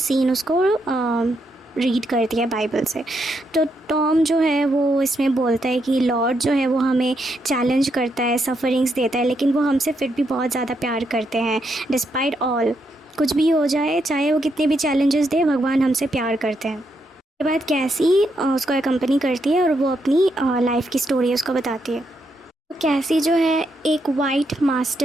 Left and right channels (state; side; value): normal; both; correlation 0.79